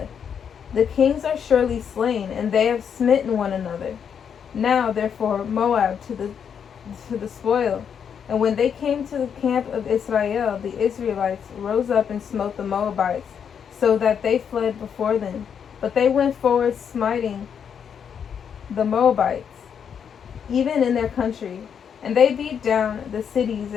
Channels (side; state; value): right; quieter; 7.6 dB